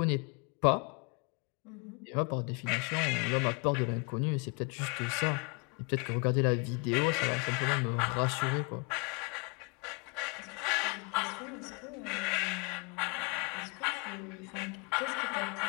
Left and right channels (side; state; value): right; quieter; 32.7 dB